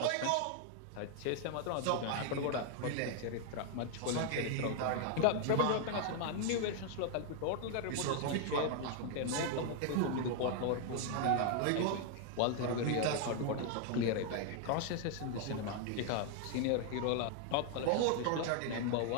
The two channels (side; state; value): both; different; correlation 0.00